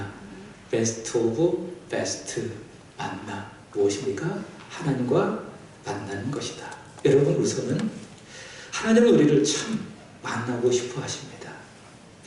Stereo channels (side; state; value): both; identical; correlation 1.00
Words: 베스트 오브 베스트 만남 무엇입니까? 하나님과 만나는 것이다. 여러분 우선은 하나님은 우리를 참 만나고 싶어 하십니다.